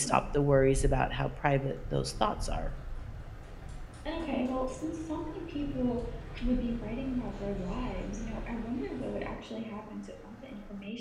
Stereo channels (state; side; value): identical; both; correlation 1.00